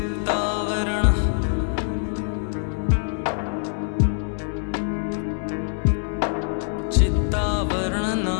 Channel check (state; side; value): silent; right; digital silence